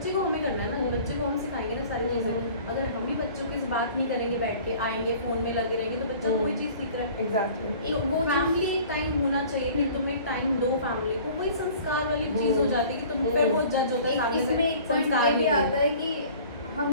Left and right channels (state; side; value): inverted; both; correlation -0.48